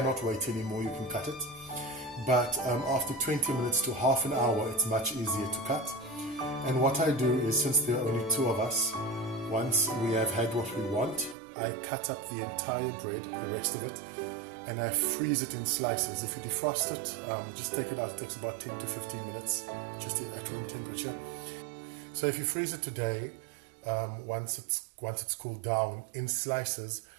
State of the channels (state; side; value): drops out; left; at 11.4 s